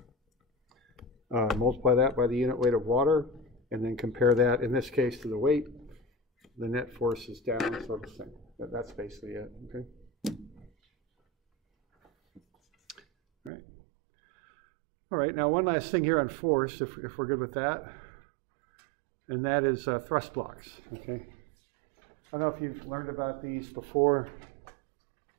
multiply that by the unit weight of water, and then compare that, in this case, to the weight. The net force is down, so the same. That's basically it, okay? All right. All right, now one last thing here on force, if we're good with that, and that is thrust blocks, okay? I don't know if you've learned about these before,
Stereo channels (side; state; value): left; drops out; at 13.5 s